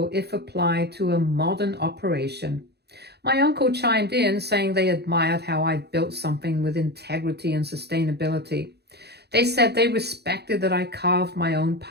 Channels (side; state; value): left; late; 0.48 ms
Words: if applied to a modern operation. My uncle chimed in, saying they admired how I built something with integrity and sustainability. They said they respected that I carved my own